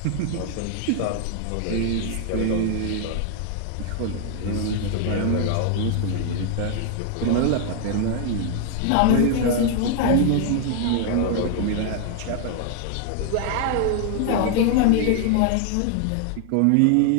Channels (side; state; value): both; different; correlation 0.00